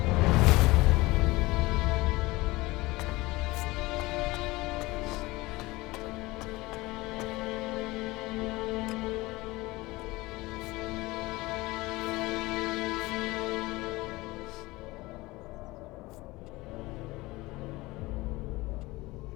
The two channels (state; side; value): quieter; right; 20.9 dB